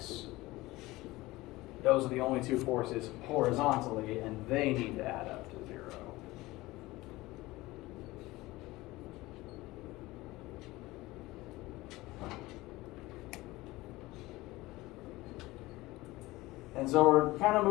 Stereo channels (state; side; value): quieter; right; 19.5 dB